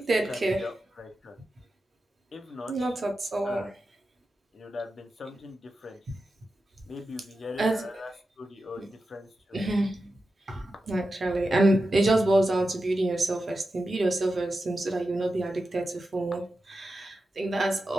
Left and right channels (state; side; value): normal; both; correlation 0.91